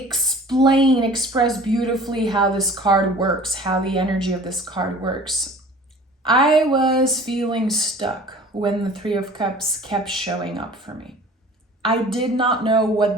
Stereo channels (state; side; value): normal; both; correlation 0.45